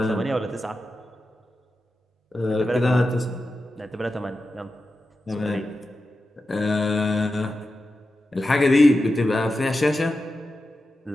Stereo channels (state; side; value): normal; both; correlation 0.91